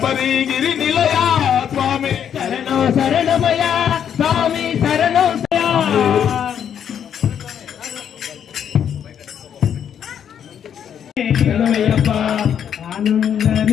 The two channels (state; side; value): quieter; right; 8.8 dB